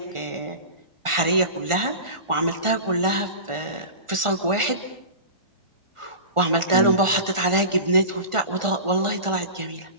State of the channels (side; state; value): left; late; 1.4 ms